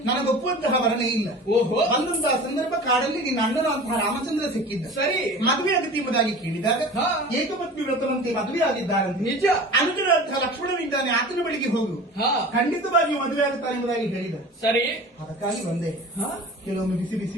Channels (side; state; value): both; normal; correlation 0.38